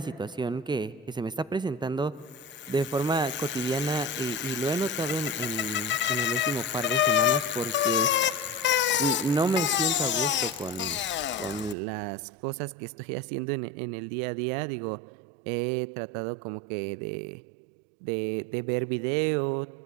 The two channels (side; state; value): left; drops out; at 11.8 s